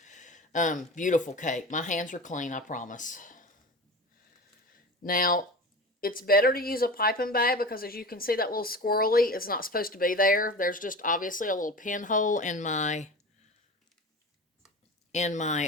Beautiful cake. My hands are clean, I promise. Now, it's better to use a piping bag because as you can see, that little squirrely is not supposed to be there. There's just obviously a little pinhole in my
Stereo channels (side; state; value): both; normal; correlation 0.32